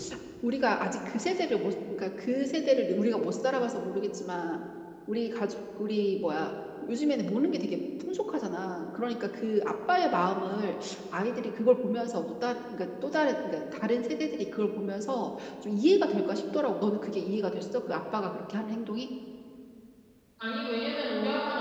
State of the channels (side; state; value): both; identical; correlation 1.00